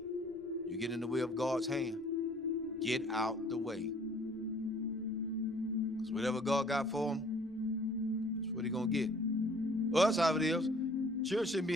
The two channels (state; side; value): noise; left; rumble, 30 dB below the sound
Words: you get in the way of God's hand. Get out the way. Because whatever God got for them, that's what he's going to get. Well, that's how it is. Children shouldn't